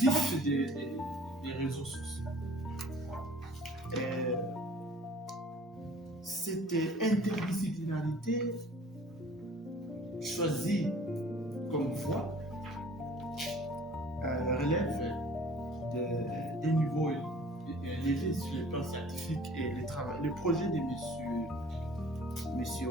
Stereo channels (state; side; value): normal; both; correlation 0.50